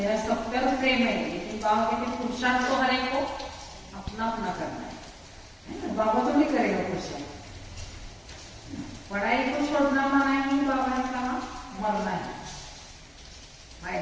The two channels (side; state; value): both; identical; correlation 1.00